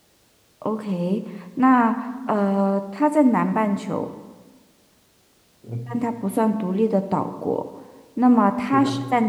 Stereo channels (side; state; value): both; identical; correlation 1.00